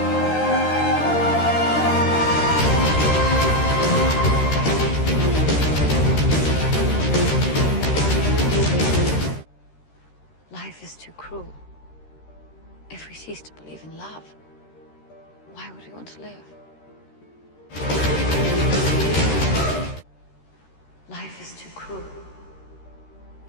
Life is too cruel. If we cease to believe in love, why would we want to live? Life is too cruel.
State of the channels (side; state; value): right; late; 13 ms